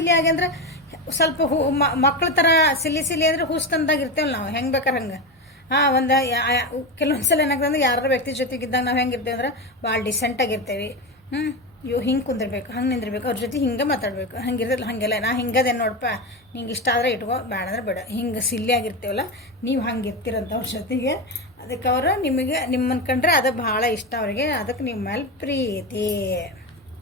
ಆಗಿ ಅಂದ್ರೆ ಸ್ವಲ್ಪ ಮಕ್ಳ ಥರ ಸಿಲ್ಲಿ ಅಂದರೆ ಹುಸ್ತಂದಾಗ ಇರ್ತೇವಲ್ಲ ನಾವು, ಹೆಂಗೆ ಬೇಕಾರೆ ಹಂಗೆ. ಒಂದು ಕೆಲವೊಂದು ಸಲ ಏನಾಗ್ತದೆ, ಯಾರ ವ್ಯಕ್ತಿ ಜೊತೆಗಿದ್ದಾಗ ನಾವು ಹೆಂಗೆ ಇರ್ತೇವೆ ಅಂದ್ರೆ ಭಾಳ ಡಿಸೆಂಟಾಗಿರ್ತೇವೆ. ಹಿಂಗೆ ಕುಂದಿರ್ಬೇಕು, ಹಂಗೆ ನಿಂದಿರ್ಬೇಕು, ಅವ್ರ ಜೊತೆ ಹಿಂಗೆ ಮಾತಾಡಬೇಕು. ಹಂಗಿರ್ತಲ್ಲ, ಹಾಗೆಲ್ಲ ನಾ ಹಿಂಗದೇನು ನೋಡಪ್ಪ, ನಿಂಗೆ ಇಷ್ಟ ಆದರೆ ಇಟ್ಕೋ, ಬೇಡ ಅಂದ್ರೆ ಬೇಡ. ಹಿಂಗೆ ಸಿಲ್ಲಿ ಆಗಿರ್ತೇವಲ್ಲ, ನೀವು ಹಂಗೆ ಇರ್ತೀರಂತ ಅವ್ರ ಜೊತೆಗೆ. ಅದಕ್ಕೆ ಅವರು ನಿಮ್ಮನ್ನು ಕಂಡ್ರೆ ಅದು ಭಾಳ ಇಷ್ಟ ಅವರಿಗೆ. ಅದಕ್ಕೆ ನಿಮ್ಮ ಮೇಲೆ ಪ್ರೀತಿ.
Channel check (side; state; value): both; normal; correlation 0.17